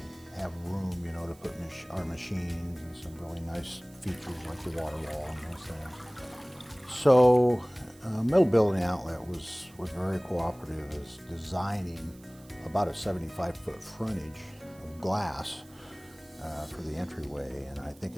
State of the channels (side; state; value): right; noise; hiss, 25 dB below the sound